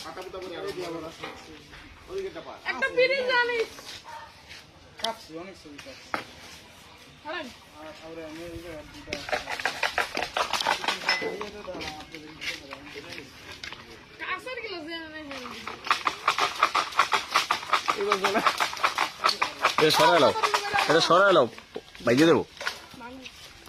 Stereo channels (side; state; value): both; identical; correlation 1.00